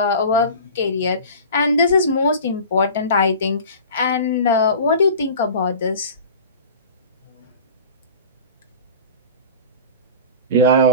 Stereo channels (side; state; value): both; inverted; correlation -0.38